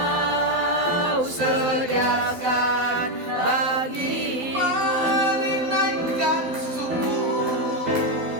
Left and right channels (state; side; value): late; left; 12 ms